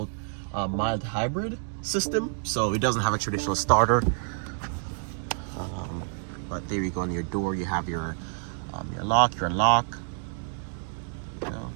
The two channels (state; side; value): silent; left; 59 dB below the other